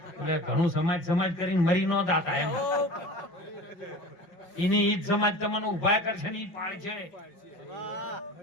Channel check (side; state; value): right; late; 5.5 ms